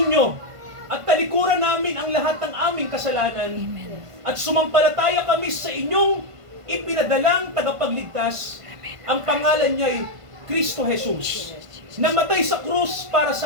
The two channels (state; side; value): late; left; 1.5 ms